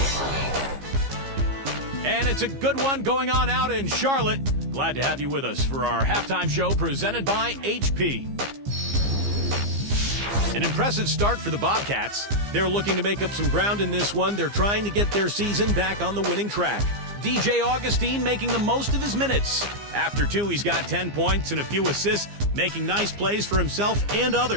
And it's a good one going on out in Charlotte. Glad to have you with us for our halftime show presented by HP. An impressive start for the Bobcats. They're looking to make up some ground in this one. They're trying to get their season back on the winning track. DJ Augustine making the most of his minutes. After 2, he's got 10 points and a few assists, making nice plays for himself and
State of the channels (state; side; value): late; left; 15 ms